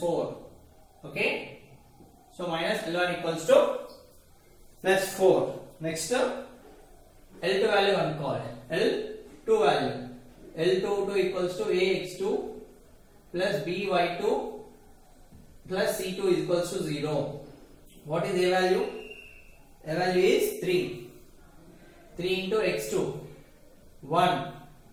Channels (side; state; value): both; identical; correlation 1.00